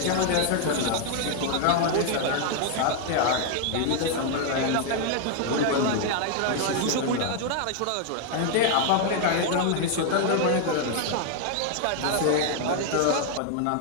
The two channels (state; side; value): different; both; correlation 0.00